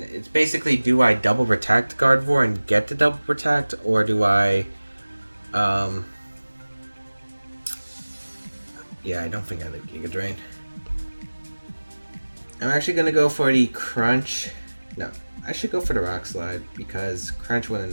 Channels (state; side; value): inverted; both; correlation -1.00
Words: It's basically, do I Double Protect Gardevoir and get the Double Protect, or do I, yeah, I don't think I like Giga Drain. I'm actually going to go for the Crunch. No, I should go for the Rock Slide, because Crunch wouldn't